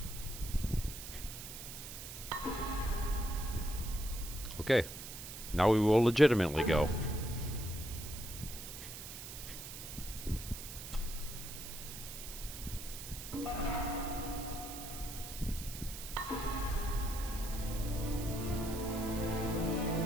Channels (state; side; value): noise; right; hiss, 10 dB below the sound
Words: Okay, now we will legitimately go.